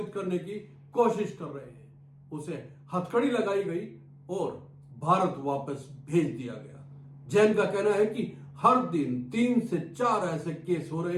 करने की कोशिश कर रहे हैं। उसे हथकड़ी लगाई गई और भारत वापस भेज दिया गया। जैन का कहना है कि हर दिन 3 से 4 ऐसे केस हो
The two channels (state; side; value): identical; both; correlation 1.00